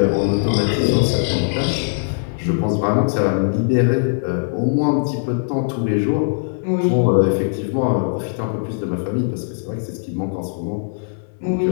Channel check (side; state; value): right; silent; 66 dB below the other